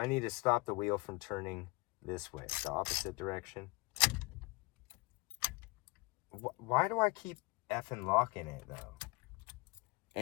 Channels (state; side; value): quieter; right; 25.4 dB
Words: need to stop the wheel from turning this way, the opposite direction. Why do I keep effing locking it though?